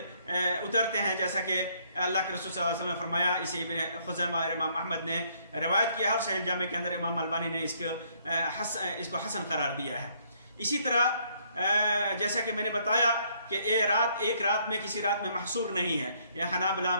اترتے ہیں، جیسا کہ اللہ کے رسول صلی اللہ علیہ وسلم نے فرمایا۔ اسے ابن خزیمہ اور امام احمد نے روایت کیا ہے، اور صحیح جامع کے اندر امام البانی نے اس کو حسن قرار دیا ہے۔ اسی طرح جیسا کہ میں نے بتایا کہ ایک رات میں کسی رات میں محصور نہیں ہے، یہ حنابلہ،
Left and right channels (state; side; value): inverted; both; correlation -0.67